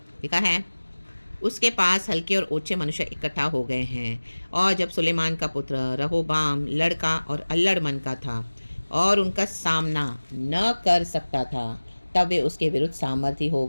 लिखा है, उसके पास हल्के और ऊंचे मनुष्य इकट्ठा हो गए हैं, और जब सुलेमान का पुत्र रहोबाम लड़का और अल्लड़ मन का था और उनका सामना न कर सकता था, तब वे उसके विरुद्ध सामर्थी हो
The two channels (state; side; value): inverted; both; correlation -1.00